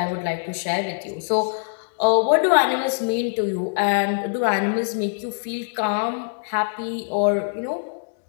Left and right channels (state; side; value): silent; right; digital silence